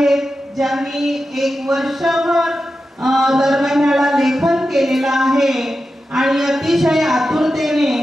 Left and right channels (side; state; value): both; normal; correlation 0.91